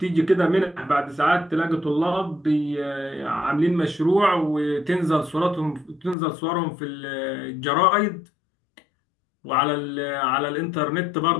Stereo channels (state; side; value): drops out; right; at 6.2 s